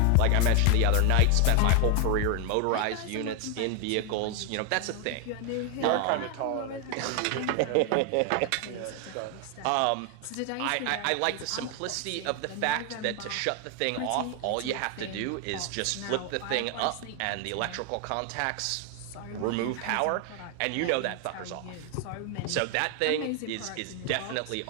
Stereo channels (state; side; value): different; both; correlation 0.01